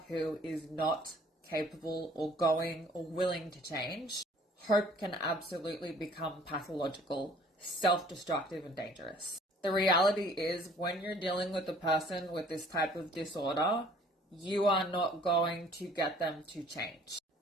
who is not capable or going or willing to change, hope can absolutely become pathological, self-destructive, and dangerous. The reality is when you're dealing with a person with this type of disorder, you are not going to get them to change.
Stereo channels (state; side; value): normal; both; correlation 0.54